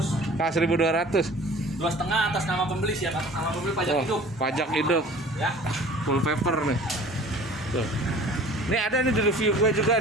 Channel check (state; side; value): normal; both; correlation 0.46